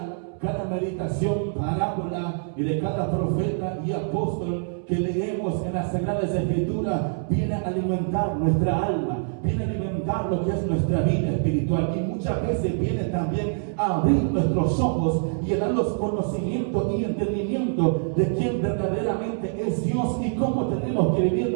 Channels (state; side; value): silent; left; 62 dB below the other